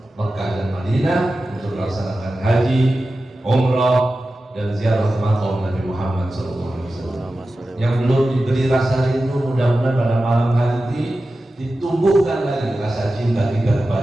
Mekah dan Madinah, untuk melaksanakan haji, umrah, dan ziarah ke makam Nabi Muhammad SAW. Yang belum diberi rasa rindu, mudah-mudahan pada malam hari ini ditumbuhkan lagi rasa cinta kita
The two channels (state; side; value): normal; both; correlation 0.94